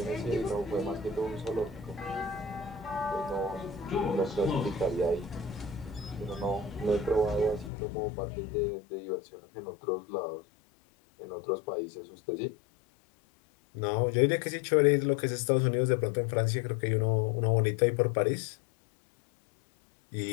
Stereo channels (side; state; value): right; drops out; at 7.7 s